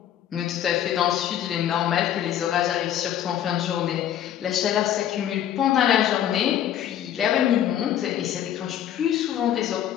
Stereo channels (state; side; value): quieter; right; 10.9 dB